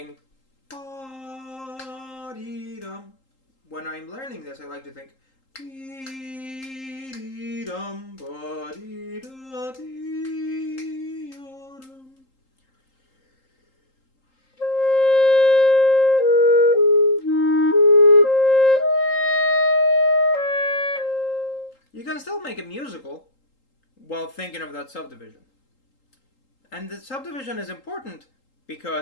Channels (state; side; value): late; right; 3.8 ms